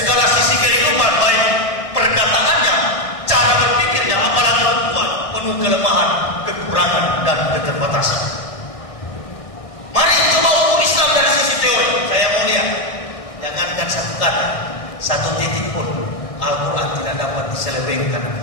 sisi kehidupan, baik perkataannya, cara berpikirnya, apalagi kuat, penuh kelemahan, kekurangan, dan keterbatasan. Mari coba ukur Islam dari sisi teori. Saya mau lihat, jangankan satu kata, satu titik pun Al-Quran tidak dapat diselewengkan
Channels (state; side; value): late; right; 1.6 ms